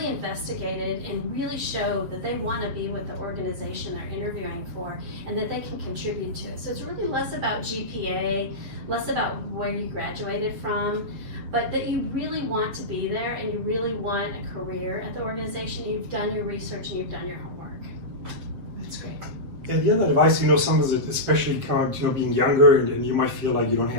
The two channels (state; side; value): late; left; 7.5 ms